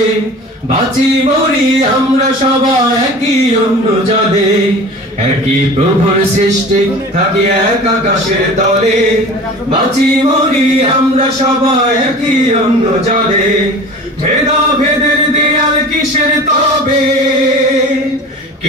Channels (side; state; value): both; normal; correlation 0.39